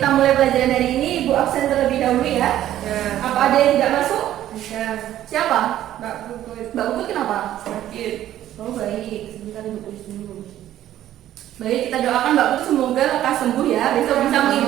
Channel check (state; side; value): quieter; left; 12.6 dB